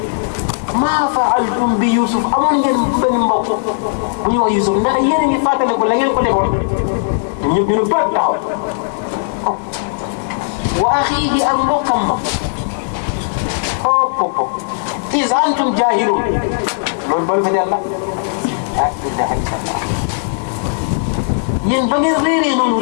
maa faaltum bi Yusuf amoon ngeen benn mbokk bu ñuy wax Yusuf ndax yéen a ngi fàttaliku la ngeen ko defoon ñëpp ñu ne bët taxaw wa axiihi ak mbokkam ma hop is antum jaahilun loolu balu fa yàlla ah ilaha illallah yéen ba ngeen réeree noonu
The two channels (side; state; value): right; silent; digital silence